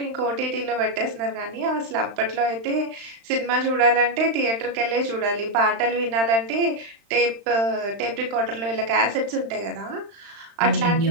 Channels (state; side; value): late; left; 35 ms